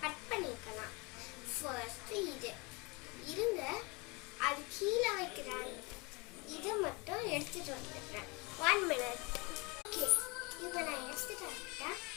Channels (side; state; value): right; quieter; 27.9 dB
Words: கட் பண்ணிக்கலாம். ஃபர்ஸ்ட் இது இருங்க, அது கீழே வைக்கிறாங்க, இதை மட்டும் எடுத்துட்டு வந்துடுறேன். 1 minute. ஓகே, இப்போ நான் எடுத்துட்டு வந்துட்டேன்.